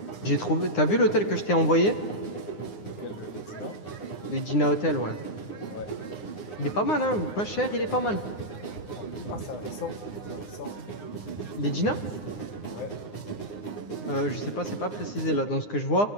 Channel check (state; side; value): late; right; 9.7 ms